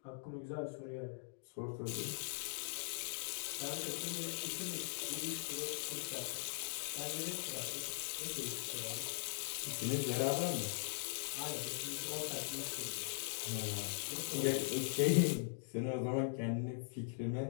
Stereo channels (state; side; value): silent; right; digital silence